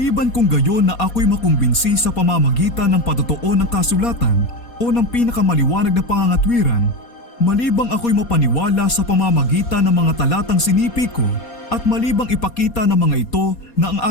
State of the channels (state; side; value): late; right; 4.2 ms